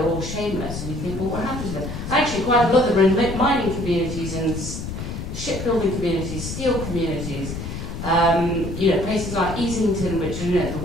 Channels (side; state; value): left; noise; rumble, 7 dB below the sound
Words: all shameless. And you think, well, what happened to them? Actually, quite a lot of them are in mining communities and shipbuilding communities, steel communities, you know, places like Easington, which are, you know, the